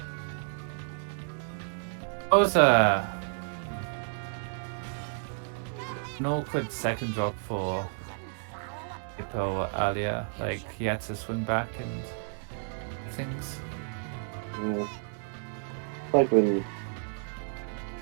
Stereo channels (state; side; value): silent; left; 57 dB below the other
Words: That was an awkward second drop for Vapo earlier. Like, he had to swing back and things. Like when